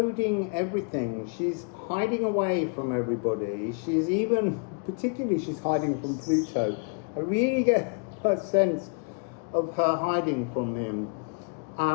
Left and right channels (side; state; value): right; quieter; 39.5 dB